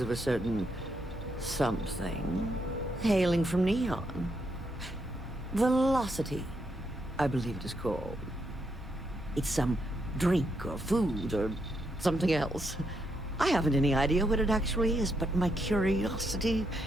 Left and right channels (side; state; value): both; normal; correlation 0.79